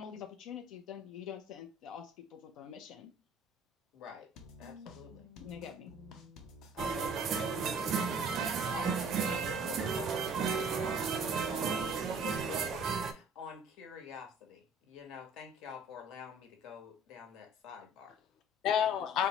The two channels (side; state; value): both; normal; correlation 0.51